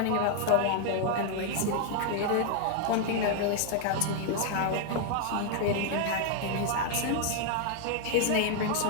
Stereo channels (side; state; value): both; different; correlation 0.00